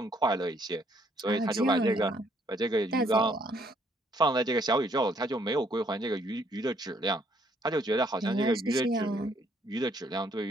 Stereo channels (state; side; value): normal; both; correlation 0.67